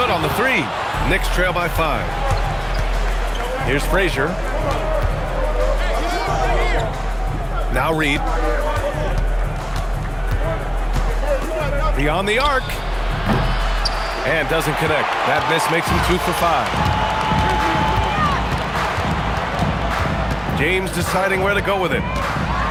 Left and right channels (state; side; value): identical; both; correlation 1.00